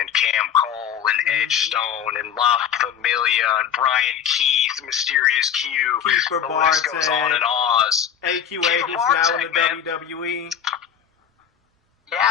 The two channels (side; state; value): right; quieter; 8.7 dB